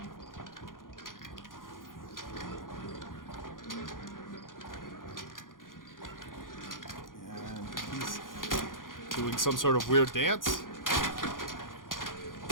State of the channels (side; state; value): right; late; 0.90 ms